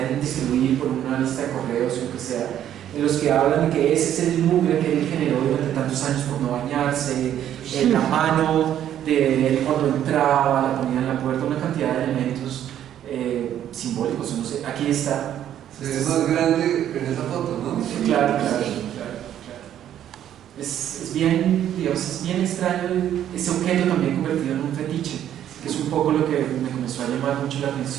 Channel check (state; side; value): quieter; left; 10.8 dB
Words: distribuir por una lista de correos o lo que sea, en los que hablan de que ese es el mugre que él generó durante tantos años por no bañarse, la mano de él cuando entraba, la ponía en la puerta, una cantidad de elementos simbólicos, no sé, aquí está. Es más grande en esa foto, ¿no? Claro. Es bien, digamos, es bien extraño ese objeto también convertido en un fetiche, que es un poco lo que me comenzó a llamar mucho la